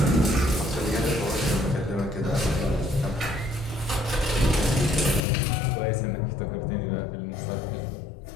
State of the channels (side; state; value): right; drops out; at 5.2 s